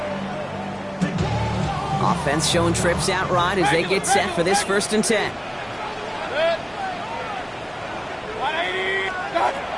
Offense showing trips out right as they get set for this first and 10.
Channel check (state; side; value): identical; both; correlation 1.00